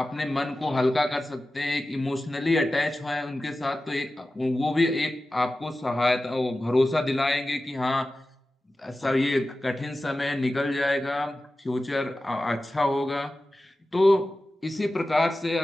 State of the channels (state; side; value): normal; both; correlation 0.95